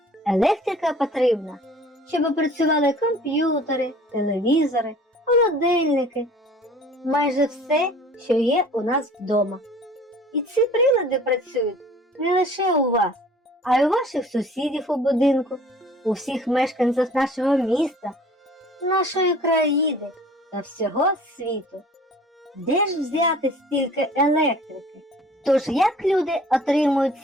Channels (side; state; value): both; normal; correlation 0.49